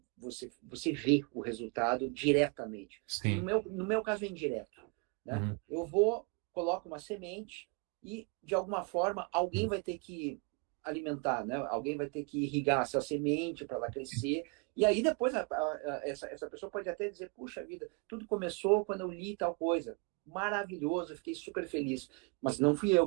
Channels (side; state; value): left; quieter; 32.1 dB